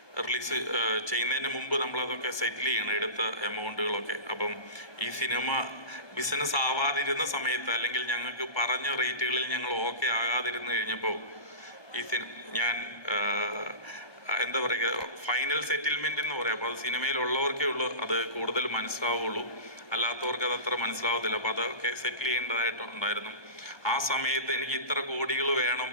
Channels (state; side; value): late; right; 1.2 ms